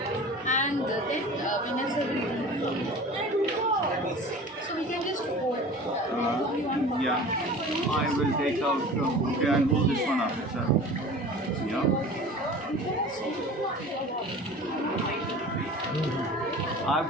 and then Vinay sir will read from it. So we can just go. Yeah, I will take out, okay, I'll hold this one up, sir. Yeah. I've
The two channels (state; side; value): normal; both; correlation 0.39